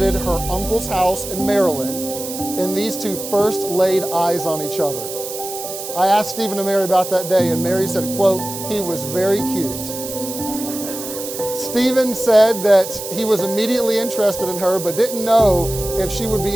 her uncle's house in Maryland, and these two first laid eyes on each other. I asked Stephen and Mary about that day, and Mary said, quote, "He was very cute." Stephen said that he was immediately interested in her, but didn't know if she would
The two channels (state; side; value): noise; right; hiss, 9 dB below the sound